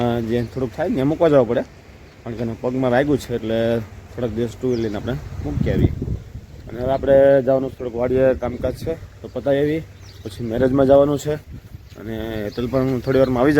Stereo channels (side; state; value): both; identical; correlation 1.00